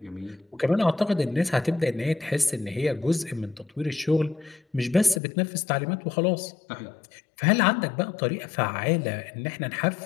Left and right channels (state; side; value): drops out; right; at 5.2 s